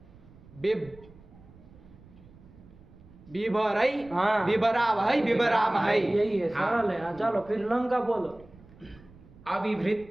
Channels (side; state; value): right; noise; rumble, 23 dB below the sound